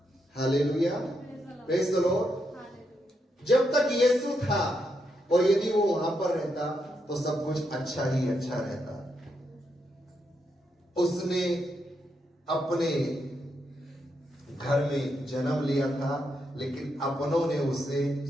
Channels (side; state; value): both; normal; correlation 0.81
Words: Hallelujah, praise the Lord. जब तक यीशु था और यदि वो वहां पर रहता तो सब कुछ अच्छा ही अच्छा रहता। उसने अपने घर में जन्म लिया था, लेकिन अपनों ने उसे